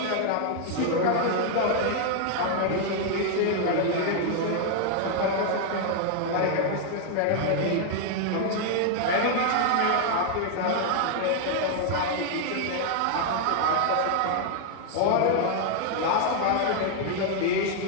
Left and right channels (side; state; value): both; different; correlation 0.00